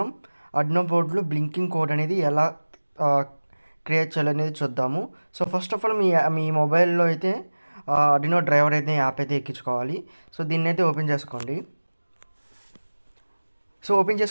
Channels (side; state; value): both; inverted; correlation -1.00